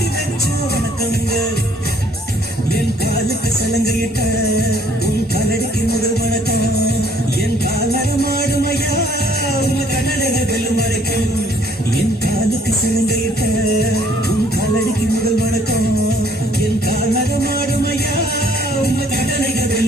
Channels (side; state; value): both; normal; correlation 0.61